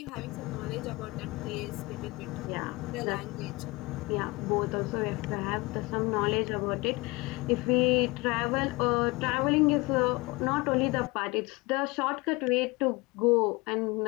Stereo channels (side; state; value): right; quieter; 23.9 dB